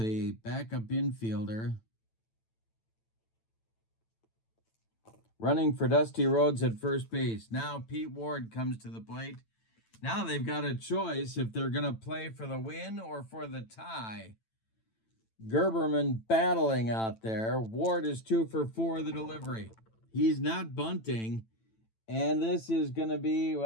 backup infielder. Running for Dusty Rhodes at first base. Now Pete Ward comes to the plate. Now they've got a choice if they're going to play for the win or for the tie. Gerberman battling out there. Ward is 2 for 4 the delivery. He's not bunting. And this is going to be,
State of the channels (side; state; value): right; late; 9.0 ms